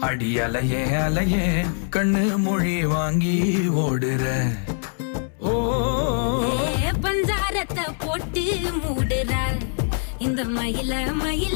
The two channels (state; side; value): silent; right; 63 dB below the other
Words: அடி அலையே அலையே கண்ணு மொழி வாங்கி ஓடுற ஓ பஞ்சாரத்தை போட்டு மூடுற இந்த மயில